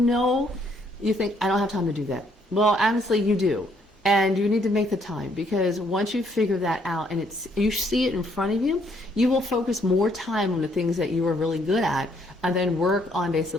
you think, I don't have time to do that. Well, honestly, you do. And you need to make the time, because once you figure that out and you see it in front of you, you will focus more time on the things that you are really good at, and then work on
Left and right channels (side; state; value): both; normal; correlation 0.69